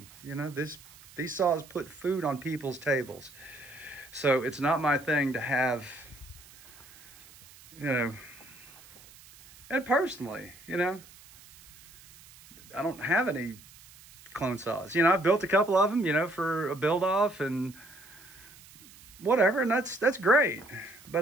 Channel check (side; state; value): right; noise; hiss, 22 dB below the sound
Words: You know, these saws put food on people's tables. So it's not my thing to have, you know, and personally, you know, I don't have any clone saws. You know, I've built a couple of them, you know, for a build off and whatever, and that's great.